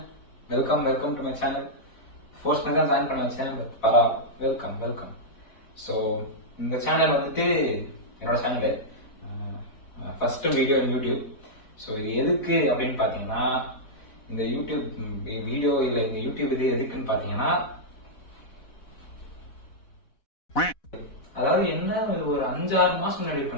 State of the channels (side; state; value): right; late; 4.1 ms